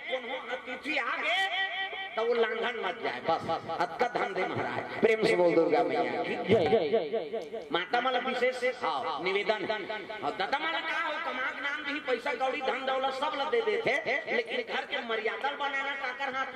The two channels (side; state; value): both; identical; correlation 1.00